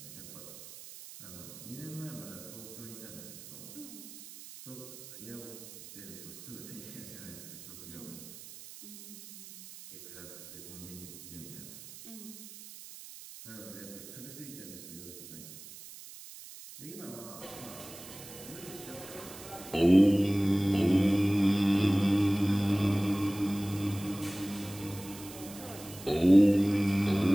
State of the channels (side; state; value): right; noise; hiss, 15 dB below the sound